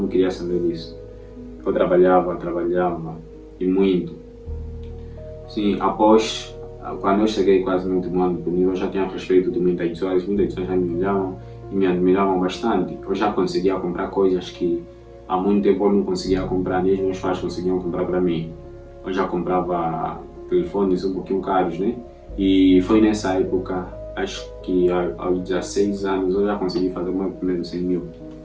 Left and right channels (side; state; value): both; identical; correlation 1.00